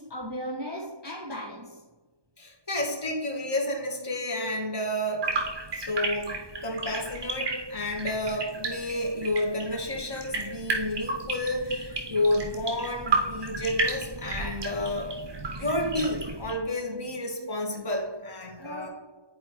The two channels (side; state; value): left; late; 1.2 ms